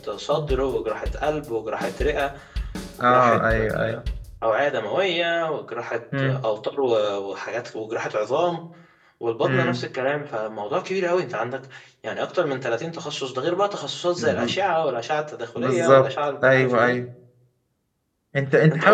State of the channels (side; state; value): both; identical; correlation 1.00